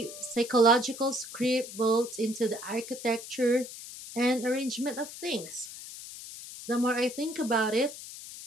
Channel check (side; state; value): left; noise; hiss, 12 dB below the sound